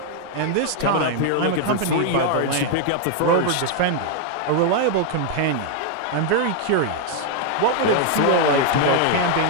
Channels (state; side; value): different; both; correlation 0.00